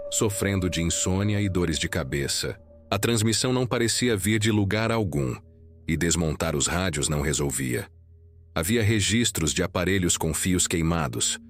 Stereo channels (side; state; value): both; identical; correlation 1.00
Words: sofrendo de insônia e dores de cabeça. A transmissão não parecia vir de lugar algum, e desmontar os rádios não resolvia. Havia registros de aparelhos com fios queimados,